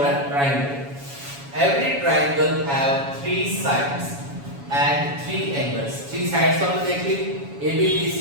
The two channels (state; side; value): late; left; 7.2 ms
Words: a triangle. Every triangle have three sides and three angles. Three sides हमने देख ली, AB,